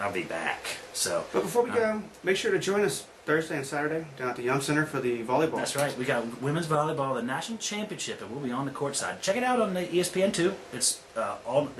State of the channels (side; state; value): both; identical; correlation 1.00